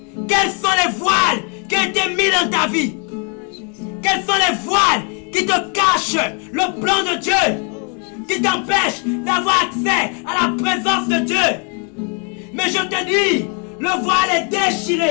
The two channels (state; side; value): quieter; right; 36.7 dB